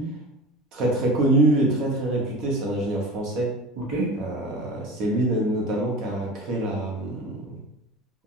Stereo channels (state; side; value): normal; both; correlation 0.34